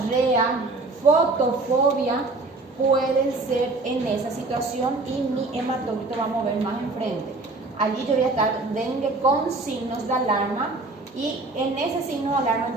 fotofobia, pueden ser en esa situación y mi hematocrito va a mover más enfrente. Allí yo voy a estar dengue con signos de alarma y en ese signo de alarma el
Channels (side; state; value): left; quieter; 3.3 dB